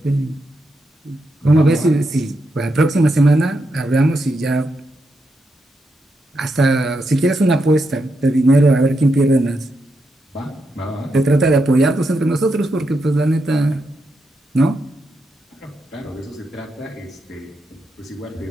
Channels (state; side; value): normal; both; correlation 0.84